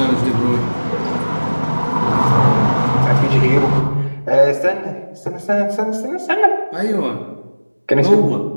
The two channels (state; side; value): inverted; both; correlation -1.00